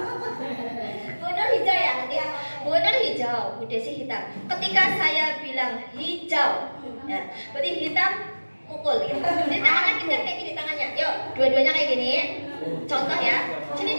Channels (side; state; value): both; inverted; correlation -1.00